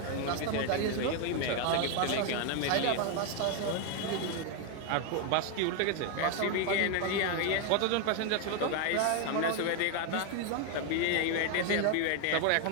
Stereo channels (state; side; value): different; both; correlation 0.01